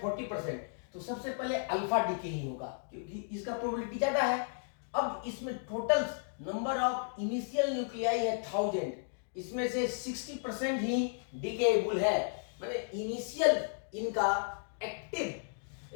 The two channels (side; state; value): right; silent; digital silence